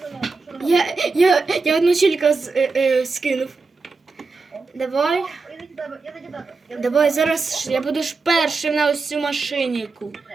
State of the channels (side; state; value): left; quieter; 4.1 dB